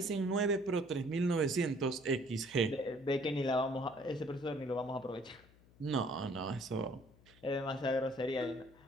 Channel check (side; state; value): left; noise; hum, 26 dB below the sound